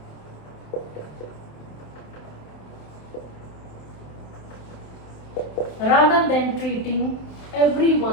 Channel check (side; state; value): right; late; 27 ms